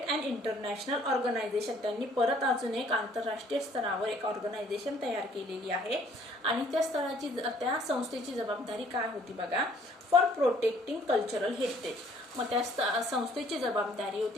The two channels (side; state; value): both; normal; correlation 0.59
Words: अँड इंटरनॅशनल ऑर्गनायझेशन, त्यांनी परत अजून एक आंतरराष्ट्रीय स्तरावर एक ऑर्गनायझेशन तयार केलेली आहे. आणि त्या संस्थेची जबाबदारी काय होती बघा, फॉर प्रोटेक्टिंग कल्चरल हेरिटेज. मग त्या संस्थेची जबाबदारी